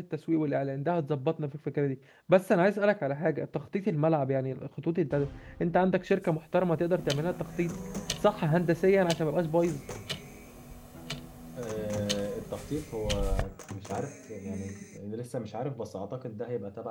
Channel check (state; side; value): identical; both; correlation 1.00